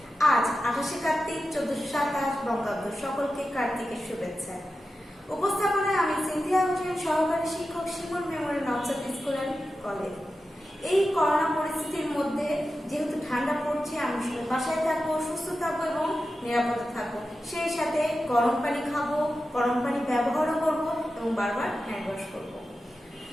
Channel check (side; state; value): both; normal; correlation 0.92